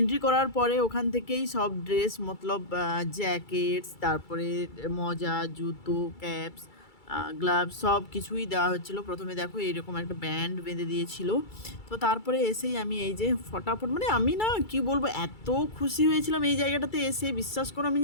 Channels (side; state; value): right; late; 2.3 ms